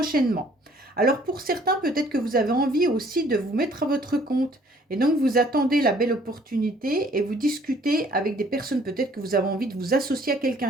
Alors, pour certains, peut-être que vous avez envie aussi de vous mettre à votre compte. Et donc, vous attendez la belle opportunité et vous discutez avec des personnes. Peut-être que vous avez envie de vous associer à quelqu'un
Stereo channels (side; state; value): both; normal; correlation 0.59